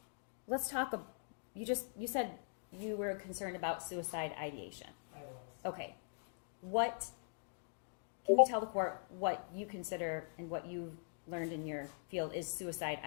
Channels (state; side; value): silent; right; digital silence